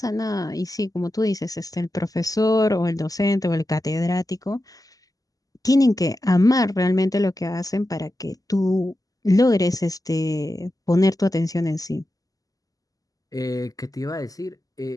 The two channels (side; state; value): right; late; 0.17 ms